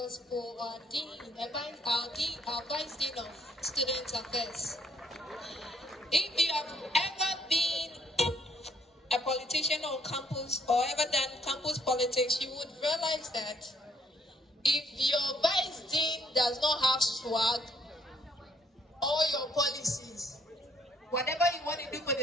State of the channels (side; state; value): both; normal; correlation 0.67